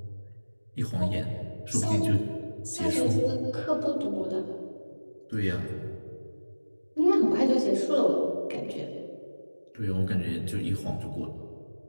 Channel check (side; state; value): both; inverted; correlation -1.00